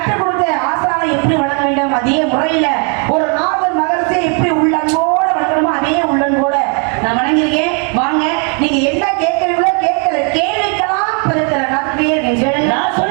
கொடுத்த ஆசானை எப்படி வளர்க்க வேண்டும், அதே முறையில ஒரு நாதர் மகரிஷியை எப்படி உள்ளன்போட வளர்க்கணுமோ அதே உள்ளன்போட நான் வணங்கியிருக்கேன். வாங்க, நீங்க என்ன கேட்கிறீங்களோ கேட்கிற கேள்விக்கெல்லாம் படுக்கிற காத்துக்கிட்டே இருக்கீங்க. நான்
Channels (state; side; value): quieter; left; 38.3 dB